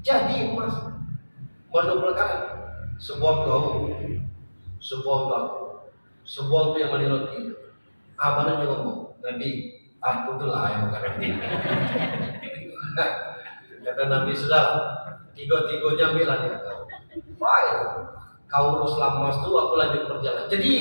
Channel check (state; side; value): inverted; both; correlation -1.00